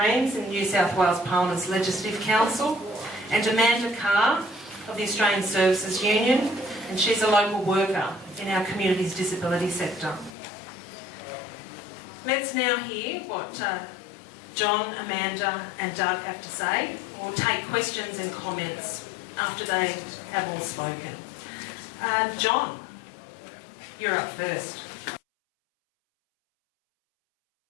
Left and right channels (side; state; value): right; drops out; at 10.4 s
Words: in New South Wales Parliament's Legislative Council, and Amanda Carr of the Australian Services Union, and she's a local worker in our community's disability sector. Let's now hear what John, Amanda and Doug have to say, or take questions and comments after they have all spoken. John, you're up first.